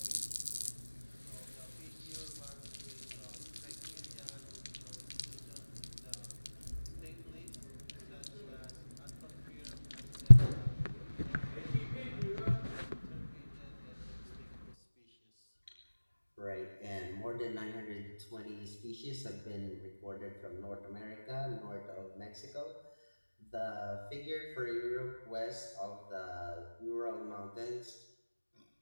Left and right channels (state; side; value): inverted; both; correlation -1.00